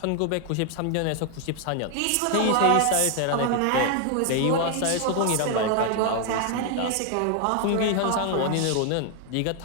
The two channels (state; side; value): different; both; correlation 0.01